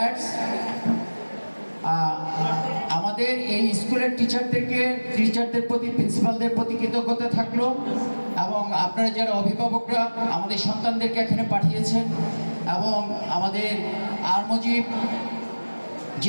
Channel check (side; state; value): both; inverted; correlation -1.00